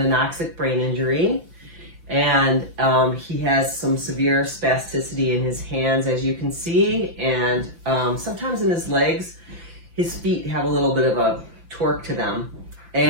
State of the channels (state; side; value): late; left; 5.9 ms